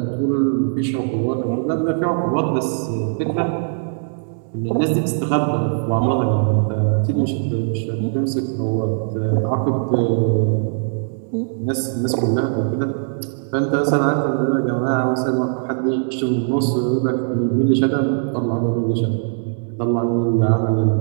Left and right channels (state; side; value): silent; left; digital silence